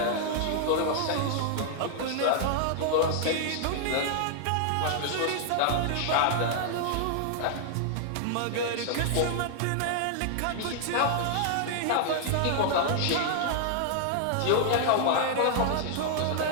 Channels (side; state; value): both; different; correlation -0.01